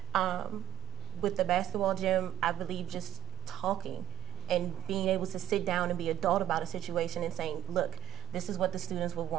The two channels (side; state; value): left; quieter; 13.2 dB